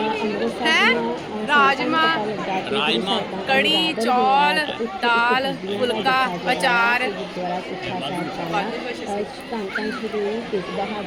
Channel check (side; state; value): both; identical; correlation 1.00